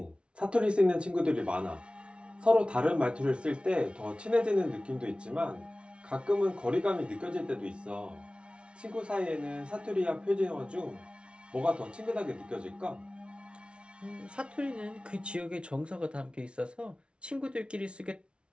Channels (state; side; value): late; left; 0.058 ms